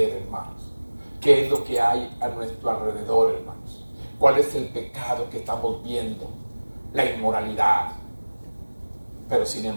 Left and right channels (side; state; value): both; inverted; correlation -1.00